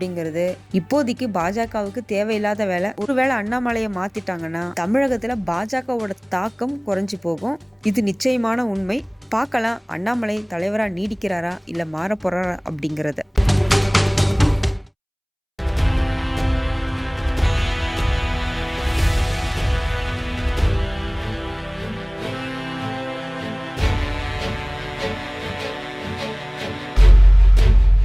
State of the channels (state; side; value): identical; both; correlation 1.00